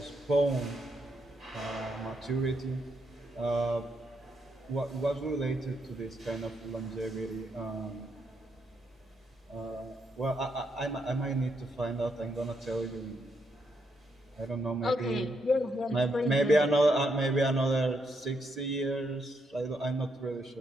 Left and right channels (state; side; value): normal; both; correlation 0.78